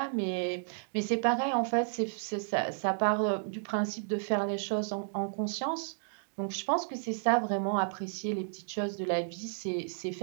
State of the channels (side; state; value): left; silent; digital silence